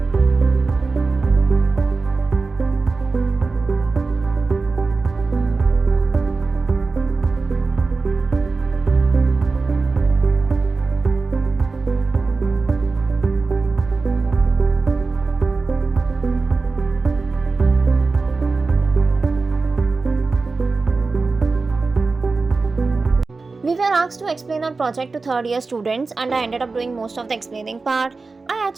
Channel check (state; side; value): quieter; left; 4.0 dB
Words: We were asked to explain our project to third year students and I ended up doing most of the explaining part. I